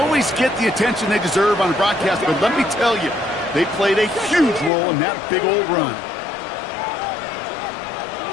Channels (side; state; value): right; drops out; at 4.7 s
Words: get the attention they deserve on a broadcast, but let me tell you, they played a huge role in that big old run.